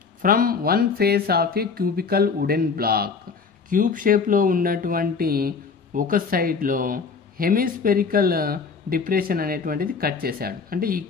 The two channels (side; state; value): right; quieter; 5.3 dB